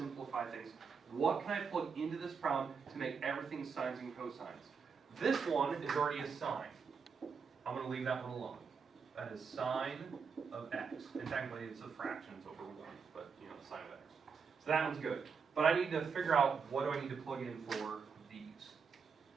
things? What can I plug into this problem to make everything sines and cosines? This one is already a sine. I'm going to leave that one alone. That is sine of x. And technically it's a fraction, it's over 1, but sine of x. So that one's good. But I need to figure out what do I need to plug in for these.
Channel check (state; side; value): quieter; left; 5.8 dB